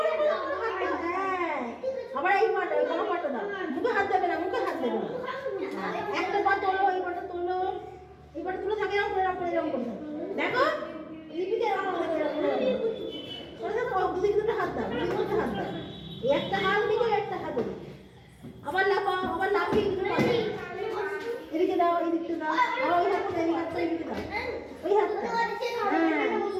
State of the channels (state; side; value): identical; both; correlation 1.00